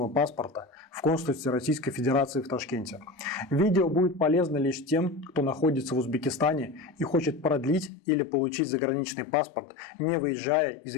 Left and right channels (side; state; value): right; drops out; at 7.9 s